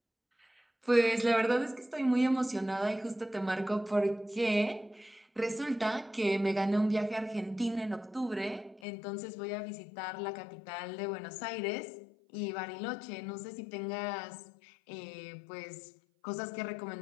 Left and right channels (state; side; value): drops out; right; at 8.8 s